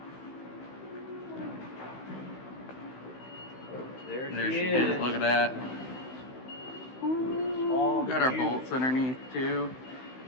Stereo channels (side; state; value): right; late; 16 ms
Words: There she is. Look at that. Ooh, got our bolts underneath too.